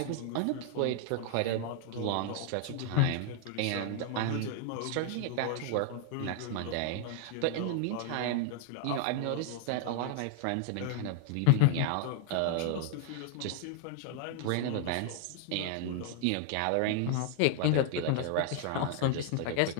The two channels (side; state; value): both; different; correlation 0.00